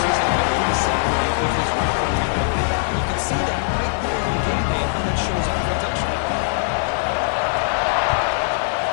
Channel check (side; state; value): right; silent; 65 dB below the other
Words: his ability to separate with his route running ability. You can see that right there on game day and how that shows up for a touchdown.